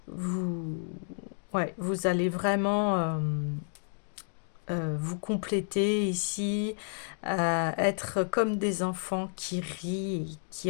vous, ouais, vous allez vraiment vous compléter ici, être comme des enfants qui rient, et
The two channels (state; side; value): silent; right; digital silence